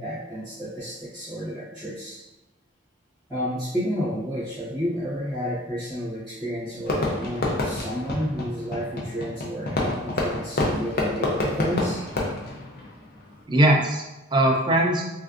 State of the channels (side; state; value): both; normal; correlation 0.47